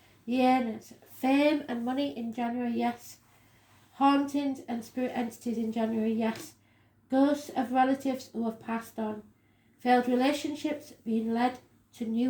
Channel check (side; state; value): both; identical; correlation 1.00